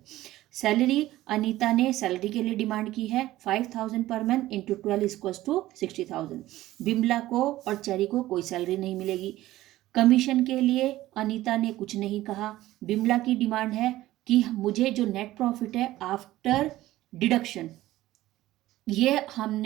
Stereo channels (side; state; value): left; quieter; 15.8 dB